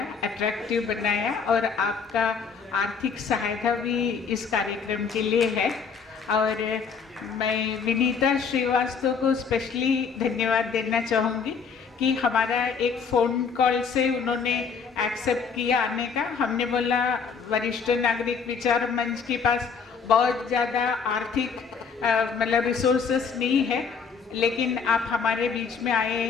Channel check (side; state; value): right; quieter; 5.9 dB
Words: अट्रैक्टिव बनाया और आपका आर्थिक सहायता भी इस कार्यक्रम के लिए है। और मैं विनीता श्रीवास्तव को स्पेशली धन्यवाद देना चाहूँगी कि हमारा एक फ़ोन कॉल से उन्होंने एक्सेप्ट किया आने का। हमने बोला वरिष्ठ नागरिक विचार मंच के पास बहुत ज़्यादा आर्थिक मतलब रिसोर्सेस नहीं है, लेकिन आप हमारे बीच में आए